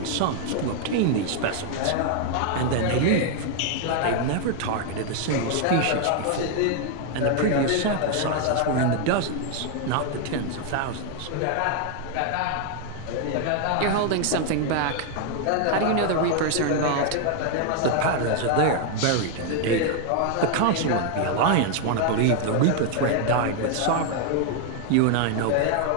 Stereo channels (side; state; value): both; different; correlation 0.00